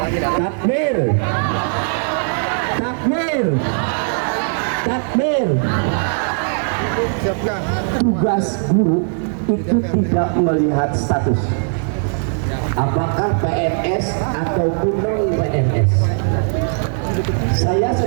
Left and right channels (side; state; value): left; silent; 59 dB below the other